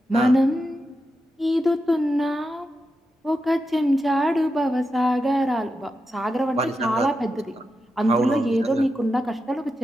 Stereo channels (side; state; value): both; normal; correlation 0.88